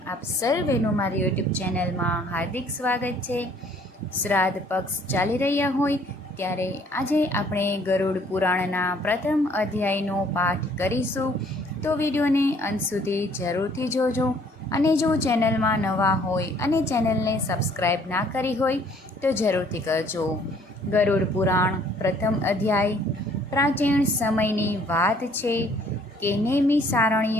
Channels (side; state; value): both; normal; correlation 0.60